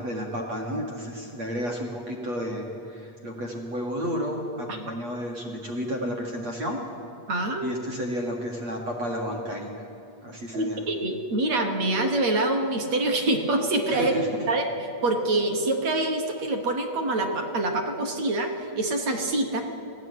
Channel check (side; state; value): left; late; 8.4 ms